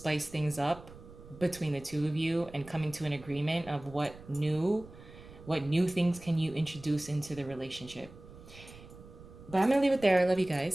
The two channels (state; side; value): noise; right; rumble, 18 dB below the sound